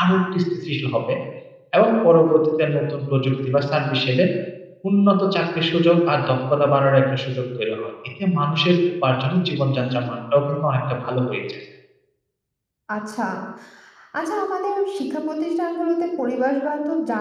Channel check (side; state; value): both; identical; correlation 1.00